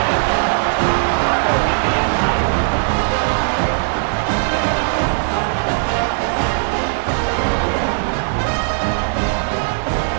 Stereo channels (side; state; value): left; silent; digital silence